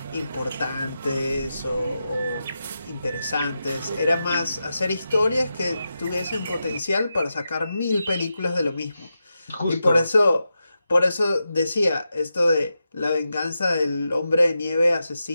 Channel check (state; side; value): inverted; both; correlation -0.89